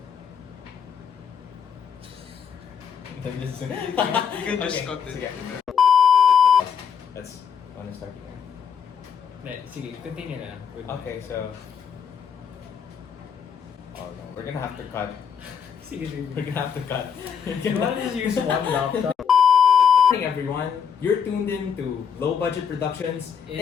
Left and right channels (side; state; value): right; quieter; 7.2 dB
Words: Listen. You can just cut it. Sige. Let's want to start here. Sige, continue na. Okay, so oh no, we're gonna have to cut. Sige. We're gonna have to cut. You want to just use one laptop? Good morning, everyone. You're tuned in to Low Budget Productions